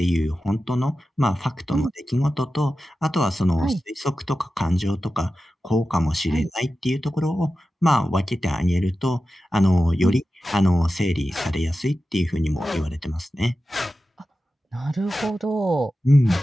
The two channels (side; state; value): both; normal; correlation 0.93